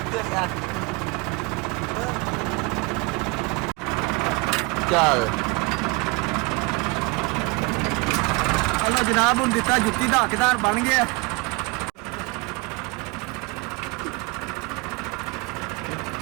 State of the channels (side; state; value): left; quieter; 26.2 dB